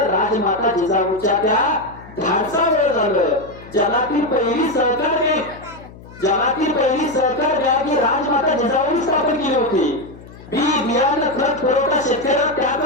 राजमाता जिजाऊच्या त्या धाडसामुळे झालं. जगातील पहिली सहकार बँक, जगातील पहिली सहकार बँक ही राजमाता जिजाऊंनी स्थापन केली होती. बियाणं खत पुरवठा शेतकऱ्याला त्या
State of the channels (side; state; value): left; noise; hum, 19 dB below the sound